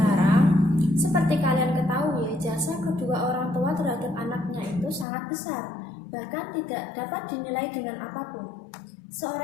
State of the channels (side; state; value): right; drops out; at 5.1 s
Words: Seperti kalian ketahui, jasa kedua orang tua terhadap anaknya itu sangat besar, bahkan tidak dapat dinilai dengan apapun.